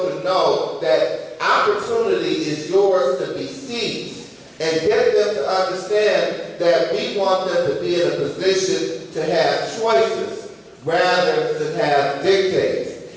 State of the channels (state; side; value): identical; both; correlation 1.00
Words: know that opportunity is yours to be seized, and get them to understand that we want them to be in a position to have choices rather than have dictates.